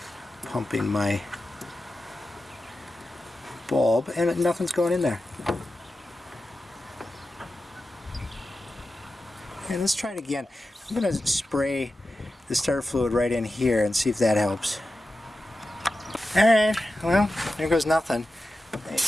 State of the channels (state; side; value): normal; both; correlation 0.92